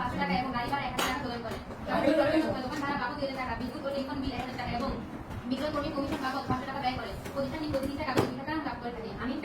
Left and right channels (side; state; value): both; identical; correlation 1.00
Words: টাকা এবং গাড়ি ভাড়া 1000 টাকা প্রদান করে। দোকান ভাড়া বাবদ 2000 টাকা, বিদ্যুৎ ও টেলিফোন বিল 1000 টাকা এবং বিক্রয় কর্মী কমিশন বাবদ 500 টাকা ব্যয় করে। প্রতিষ্ঠানটি প্রতিদিন কাগজ 2 টাকা লাভ করে থাকে। আমি